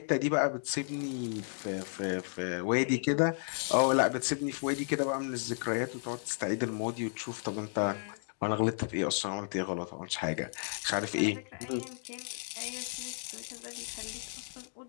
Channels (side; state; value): right; silent; digital silence